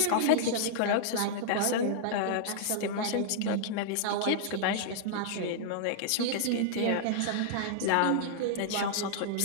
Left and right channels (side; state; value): both; different; correlation -0.02